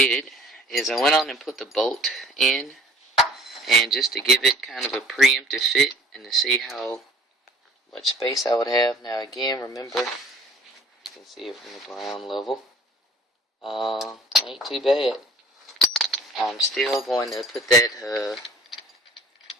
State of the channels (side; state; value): both; normal; correlation 0.52